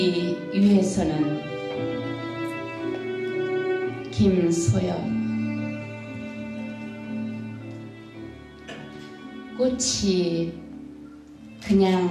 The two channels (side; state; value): both; identical; correlation 1.00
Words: 위해서는 김소연. 꽃이